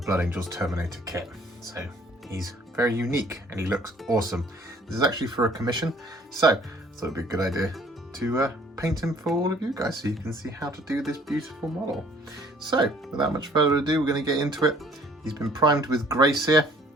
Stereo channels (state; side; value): normal; both; correlation 0.57